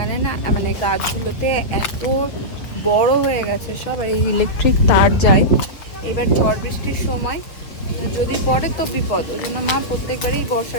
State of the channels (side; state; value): right; late; 6.7 ms